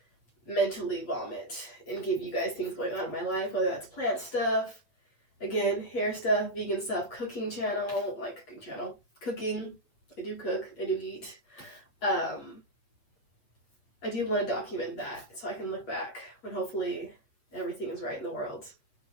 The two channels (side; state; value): right; late; 8.1 ms